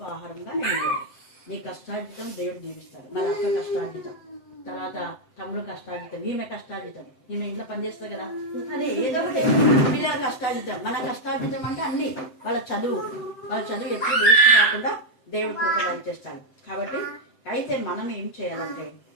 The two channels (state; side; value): late; right; 7.8 ms